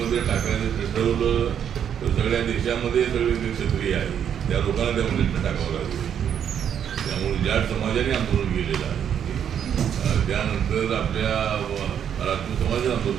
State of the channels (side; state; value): left; quieter; 8.8 dB